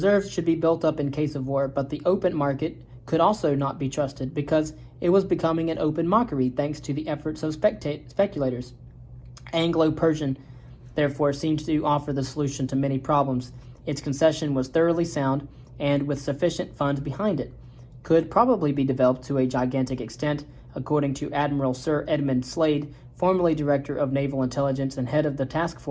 should be built up in case of war, but the open market could also not be trusted because it was becoming an open mockery thanks to the efforts of speculators. Anglo-Persian, therefore, seemed to offer the solution to many problems. Its concession was thoroughly sound and with sufficient funds behind it. Could probably be developed to a gigantic extent, according to Admiral Sir Edmund Slade, formerly Director of Naval Intelligence and head of the task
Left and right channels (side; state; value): both; identical; correlation 1.00